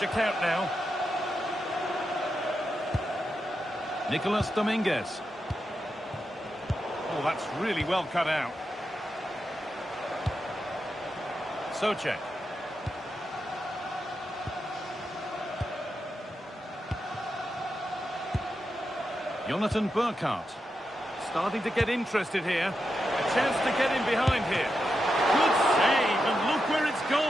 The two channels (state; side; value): normal; both; correlation 0.87